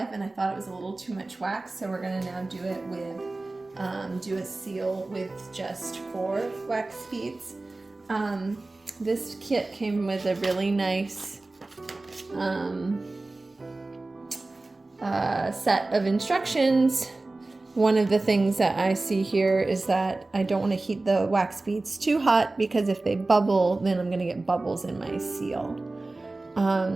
and I thought it was a little too much wax, so we're gonna now do it with, do a seal with just 4 wax beads. This kit came with a really nice set of instructions. One of the things that I see here is that I don't want to heat the wax beads too hot, because if they bubble, then I'm going to get bubbles in my seal.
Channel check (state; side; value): quieter; left; 3.1 dB